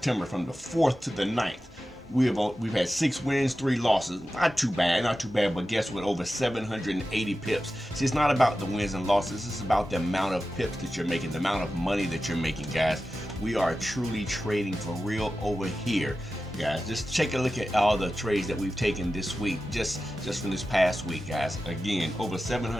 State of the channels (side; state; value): both; normal; correlation 0.93